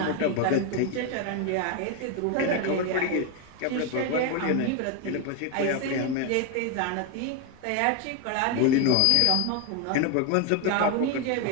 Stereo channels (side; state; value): both; different; correlation 0.02